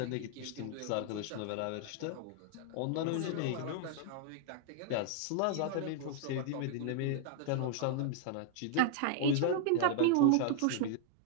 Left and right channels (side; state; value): both; different; correlation 0.00